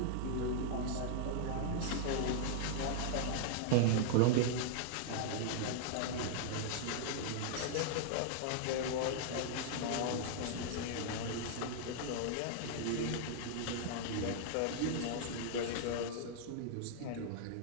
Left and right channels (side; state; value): both; different; correlation -0.01